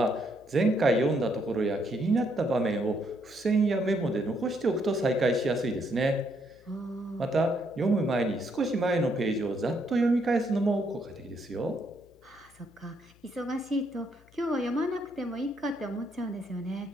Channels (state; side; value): noise; left; hum, 28 dB below the sound